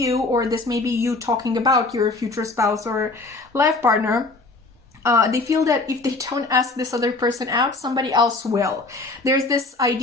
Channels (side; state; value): right; quieter; 3.4 dB